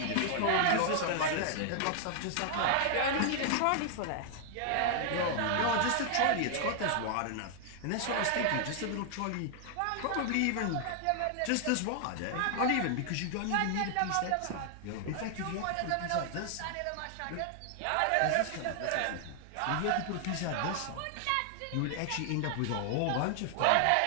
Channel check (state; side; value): different; both; correlation 0.00